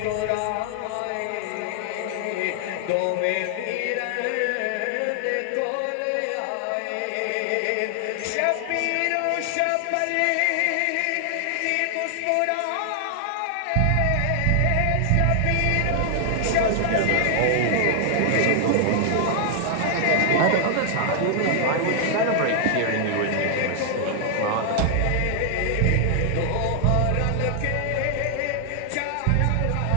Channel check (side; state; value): both; different; correlation 0.00